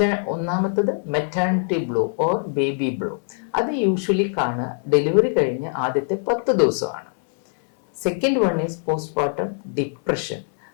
ഒന്നാമത്തത് maternity blue or baby blue. അത് യൂഷ്വലി കാണുക ഡെലിവറി കഴിഞ്ഞ് ആദ്യത്തെ 10 ദിവസമാണ്. Second one is post partum depression.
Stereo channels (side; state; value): right; silent; 64 dB below the other